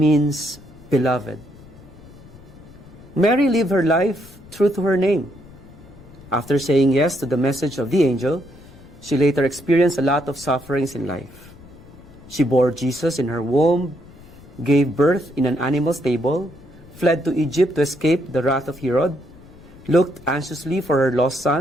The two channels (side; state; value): left; noise; rumble, 21 dB below the sound